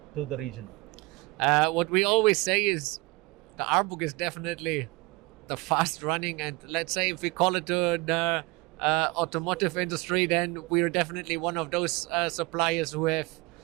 to the region? What we always say is the Arburg is definitely the fast running, and let's say if we call it the automotive industry, then we're definitely one of those suppliers who have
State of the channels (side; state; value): left; quieter; 24.7 dB